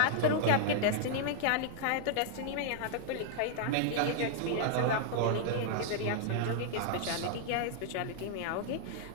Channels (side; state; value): both; different; correlation -0.01